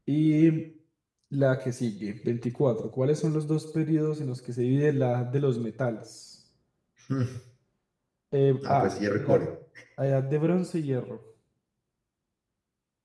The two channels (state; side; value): identical; both; correlation 1.00